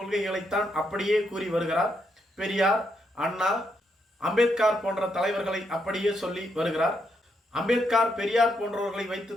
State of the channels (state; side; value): normal; both; correlation 0.79